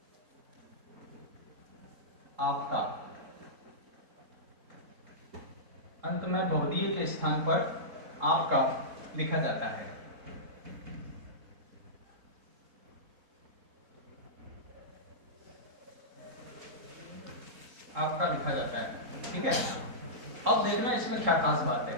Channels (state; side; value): late; left; 3.8 ms